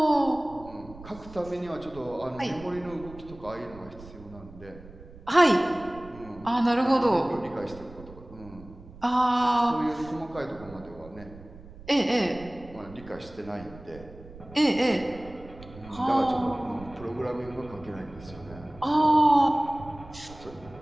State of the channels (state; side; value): noise; right; rumble, 18 dB below the sound